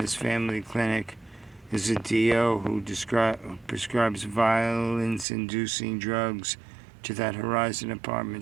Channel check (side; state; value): left; drops out; at 5.2 s